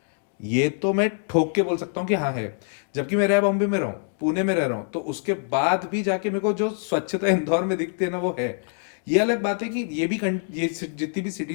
ये तो मैं ठोक के बोल सकता हूँ कि हाँ है। जबकि मैं रह बॉम्बे में रहा हूँ, पुणे में रह रहा हूँ, तो उसके बाद भी जाके मेरे को जो स्वच्छता इंदौर में दिखती है ना वो है। ये अलग बात है कि ये जितनी भी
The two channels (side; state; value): right; silent; 60 dB below the other